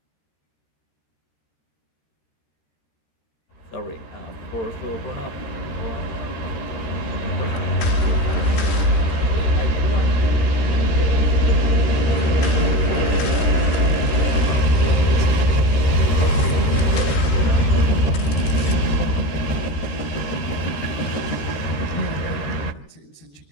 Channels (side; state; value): right; late; 13 ms